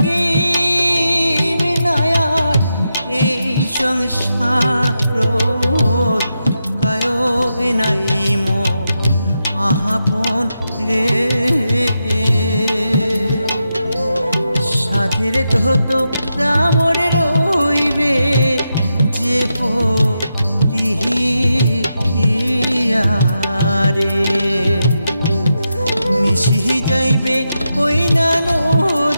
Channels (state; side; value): inverted; both; correlation -0.87